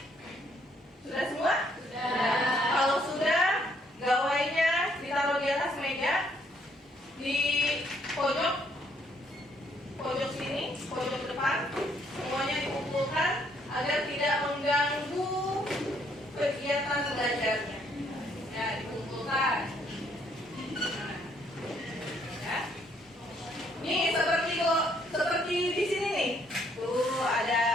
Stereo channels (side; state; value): both; normal; correlation 0.69